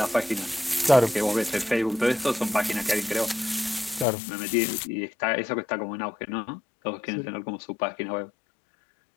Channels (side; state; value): right; drops out; at 4.0 s